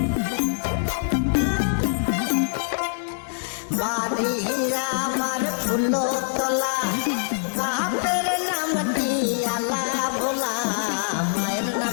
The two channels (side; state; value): right; silent; digital silence